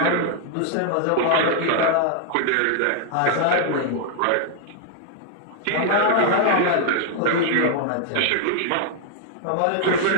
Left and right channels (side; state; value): both; different; correlation 0.00